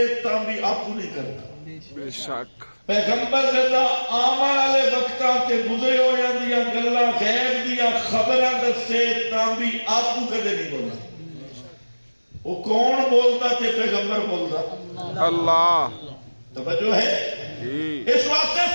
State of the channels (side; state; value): both; inverted; correlation -1.00